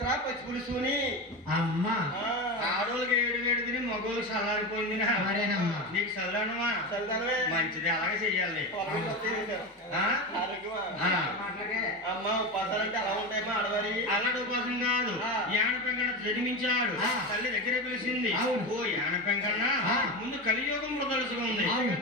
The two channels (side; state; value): both; normal; correlation 0.21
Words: పచ్చి పులుసుని అమ్మా ఆడోళ్ళకి ఏడు వేడు తిని మగోళ్ళు చల్లారిపోయింది. నీకు చల్లనమా చల్లదనమే మంచిది. అలాగే చెయ్యాలి. అమ్మా ఉపాసాలు అంటే అలా ఉంటాయమ్మా ఆడవారి. అలాంటి ఉపాసం కాదు. యానపెంకన్న జన్మించాడు, తల్లి దగ్గర పిలిచింది. ఓ యానపెంకన్న ముందు కలియుగంలో తెలుసుకుంది.